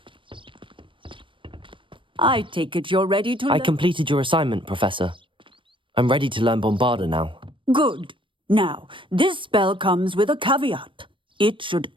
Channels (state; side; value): late; left; 0.25 ms